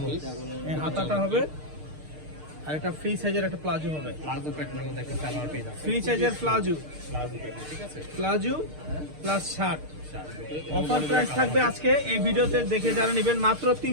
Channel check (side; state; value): left; late; 6.6 ms